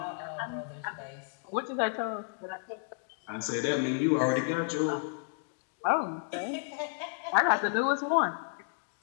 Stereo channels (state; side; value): silent; right; digital silence